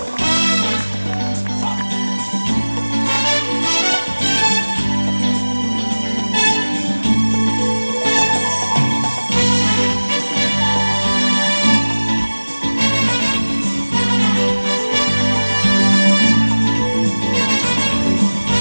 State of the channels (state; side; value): inverted; both; correlation -1.00